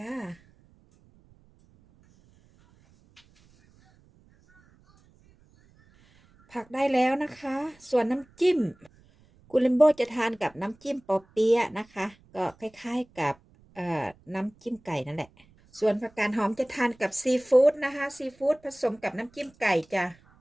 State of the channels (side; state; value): right; noise; rumble, 30 dB below the sound